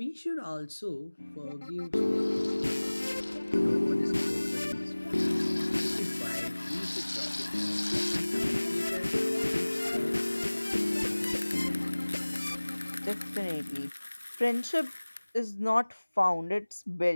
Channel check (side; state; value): both; inverted; correlation -1.00